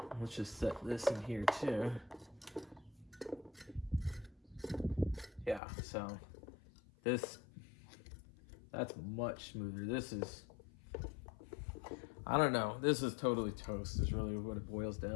Let's just set this in here too. Yeah, so that's much smoother. This is, I don't know, this is totally toast is really what it boils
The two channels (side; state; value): right; drops out; at 5.6 s